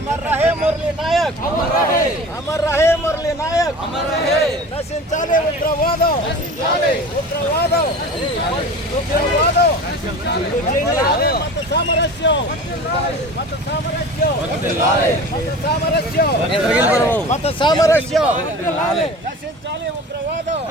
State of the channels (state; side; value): normal; both; correlation 0.37